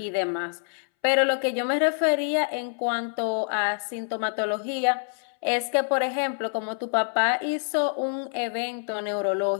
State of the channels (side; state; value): right; silent; 61 dB below the other